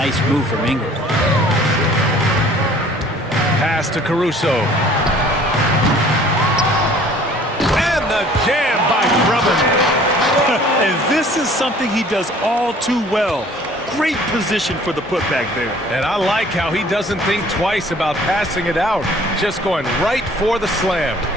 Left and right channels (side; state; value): both; normal; correlation 0.53